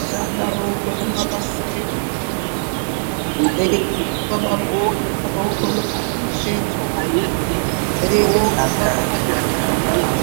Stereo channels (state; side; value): silent; left; digital silence